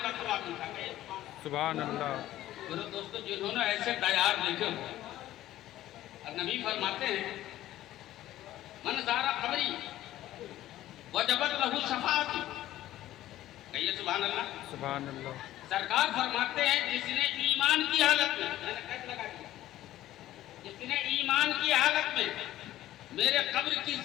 सवाब मिलता है, सुभान अल्लाह। मेरे दोस्तों, जिन्होंने ऐसे तैयार देखे हो, नबी फरमाते हैं मन ज़ारा कब्री वजबत लहू शफाअती, कहिए सुभान अल्लाह, सुभान अल्लाह। सरकार फरमाते हैं जिसने ईमान की हालत में, मैंने कैसे लगा दिया, जिसने ईमान की हालत में मेरे कब्र की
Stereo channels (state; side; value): quieter; right; 14.2 dB